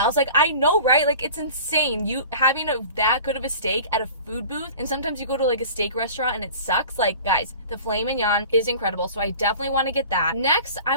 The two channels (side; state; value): both; inverted; correlation -0.41